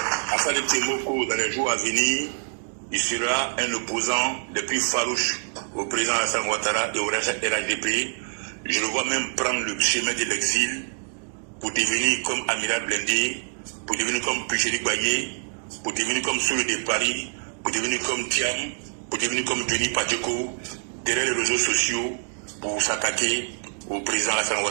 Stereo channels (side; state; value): left; silent; 61 dB below the other